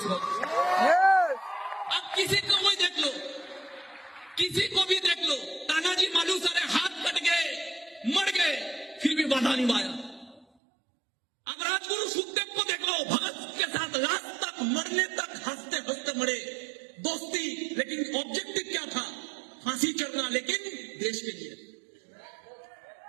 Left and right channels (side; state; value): left; drops out; at 10.5 s